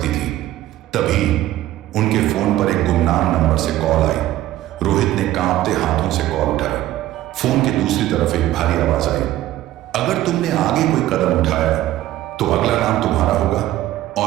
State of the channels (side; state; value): left; quieter; 14.4 dB